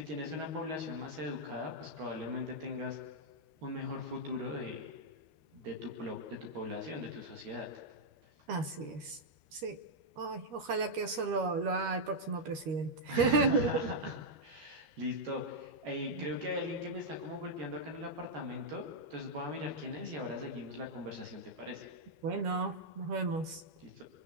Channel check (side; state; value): left; late; 13 ms